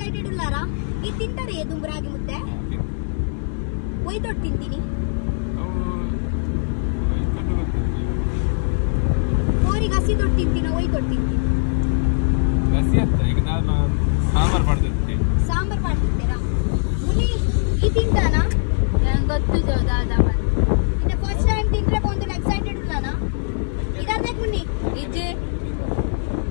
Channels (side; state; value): right; silent; 65 dB below the other